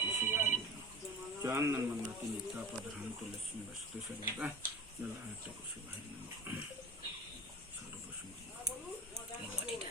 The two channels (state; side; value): normal; both; correlation 0.36